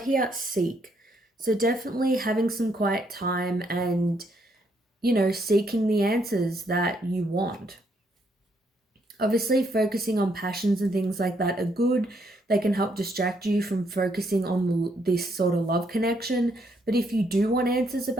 here seek. So definitely having some quiet time and, seeking the answers that you want. Obviously, focusing on passions and things like that are good. They can help distract you from focusing on this sort of love connection. But if you do want answers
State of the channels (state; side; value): normal; both; correlation 0.73